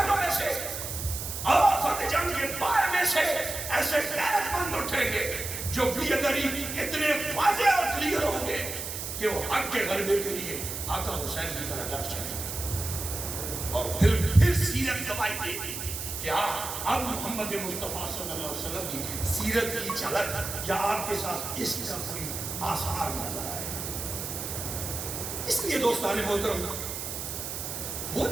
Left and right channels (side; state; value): right; noise; hiss, 6 dB below the sound